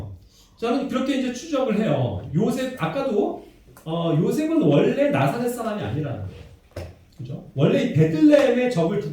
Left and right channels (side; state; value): both; identical; correlation 1.00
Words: 저는 그렇게 이제 추적을 해요. 요셉, 아까도, 요셉은 원래 나사렛 사람이 아니라는 거예요. 그죠? 원래 이 베들레헴에 적을